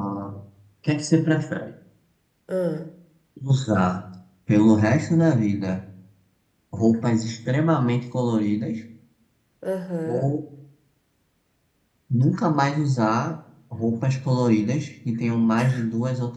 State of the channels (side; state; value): both; identical; correlation 1.00